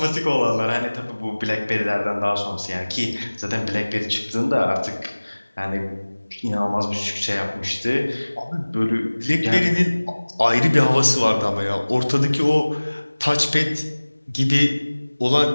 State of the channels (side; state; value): both; inverted; correlation -1.00